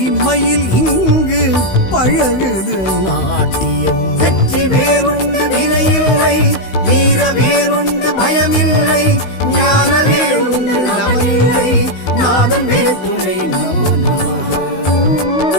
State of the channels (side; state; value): right; late; 16 ms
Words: மயில் இங்கு பழகுது நாட்டியம். வெற்றி வேறுண்டு வினையில்லை, வீர வேறுண்டு பயமில்லை, ஞான வேறுண்டு நமனில்லை, நாதன் வேதுணை நமோ நமக.